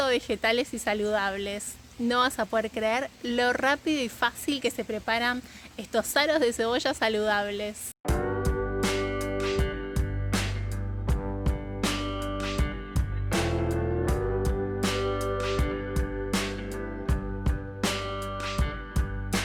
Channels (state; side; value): identical; both; correlation 1.00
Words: vegetales y saludables. No vas a poder creer lo rápido y fácil que se preparan estos aros de cebolla saludables.